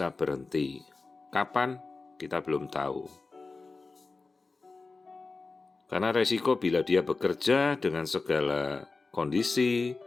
berhenti. Kapan? Kita belum tahu. Karena resiko bila dia bekerja dengan segala kondisi,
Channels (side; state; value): right; quieter; 3.9 dB